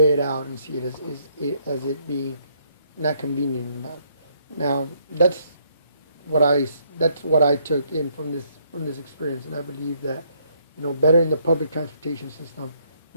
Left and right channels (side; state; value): both; inverted; correlation -0.70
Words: it out and see it as it being not convenient enough. Now that's what I took in from this experience, and I believe that bettering the public transportation system,